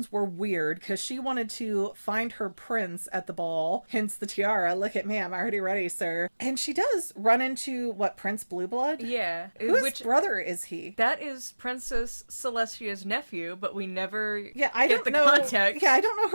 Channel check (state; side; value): inverted; both; correlation -1.00